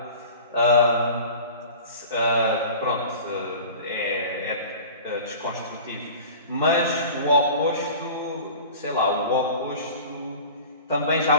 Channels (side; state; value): both; inverted; correlation -0.40